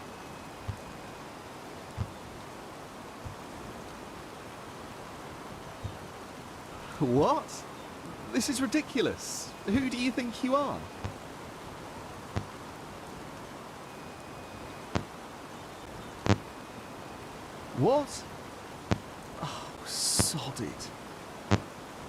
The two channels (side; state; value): both; identical; correlation 1.00